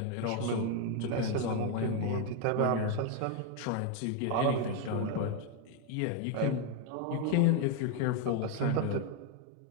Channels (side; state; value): both; different; correlation 0.01